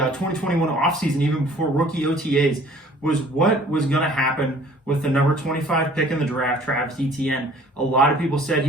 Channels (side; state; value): both; normal; correlation 0.53